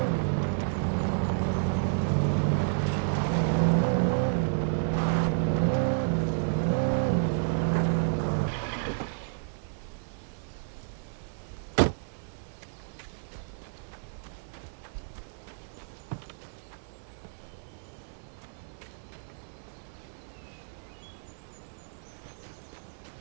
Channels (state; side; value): silent; left; 57 dB below the other